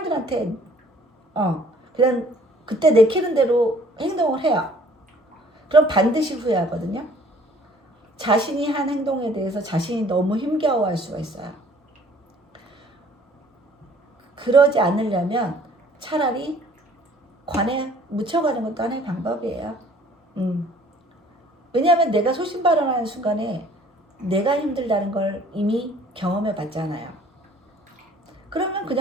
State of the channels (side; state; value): both; normal; correlation 0.56